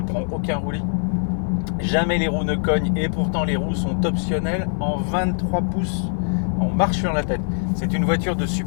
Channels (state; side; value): silent; right; 64 dB below the other